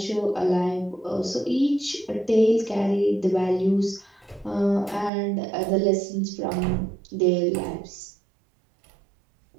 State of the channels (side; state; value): left; drops out; at 5.1 s